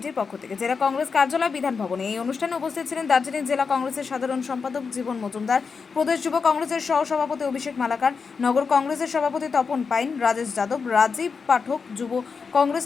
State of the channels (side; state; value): right; quieter; 5.3 dB